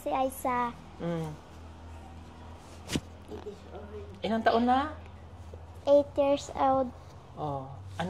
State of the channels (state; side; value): identical; both; correlation 1.00